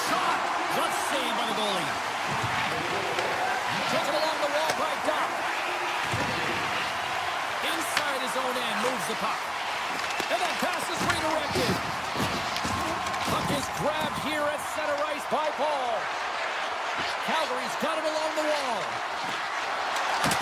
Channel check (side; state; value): both; identical; correlation 1.00